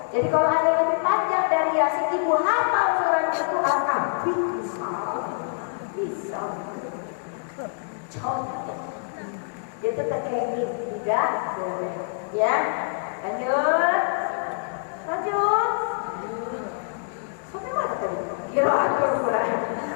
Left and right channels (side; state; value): right; silent; 61 dB below the other